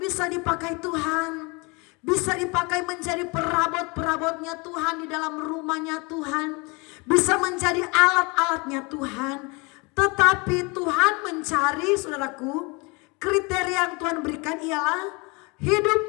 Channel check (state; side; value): quieter; right; 28.3 dB